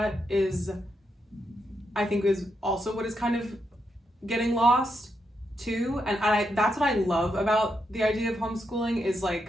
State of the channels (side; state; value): both; normal; correlation 0.82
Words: is also what is kind of getting lost too. And that's what I love about the idea of homeschooling is